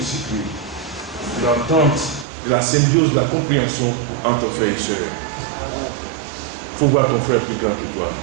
cycle de l'entente, de la symbiose, de la compréhension entre ton frère et soeur. Il faut voir ton frère plus grand que toi.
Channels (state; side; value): drops out; left; at 2.2 s